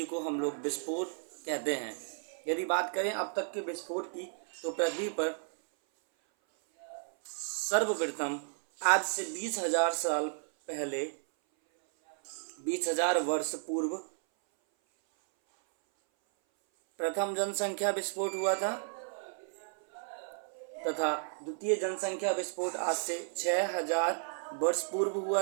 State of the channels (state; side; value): silent; left; 56 dB below the other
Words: को हम लोग विस्फोट कहते हैं। यदि बात करें अब तक के विस्फोट की तो पृथ्वी पर सर्वप्रथम आज से 20,000 साल पहले, 20,000 वर्ष पूर्व प्रथम जनसंख्या विस्फोट हुआ था तथा द्वितीय जनसंख्या विस्फोट आज से 6,000 वर्ष पूर्व